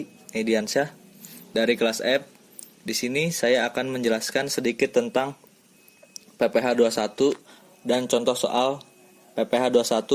Ediansyah dari kelas F. Di sini saya akan menjelaskan sedikit tentang PPh 21 dan contoh soal PPh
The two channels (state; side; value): identical; both; correlation 1.00